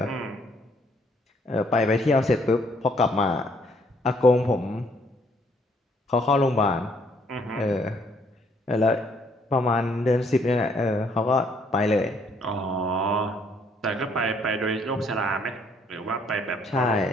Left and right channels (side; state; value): both; normal; correlation 0.66